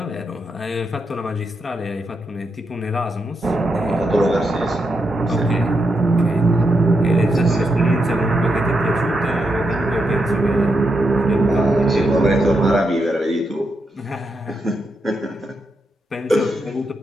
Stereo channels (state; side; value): normal; both; correlation 0.83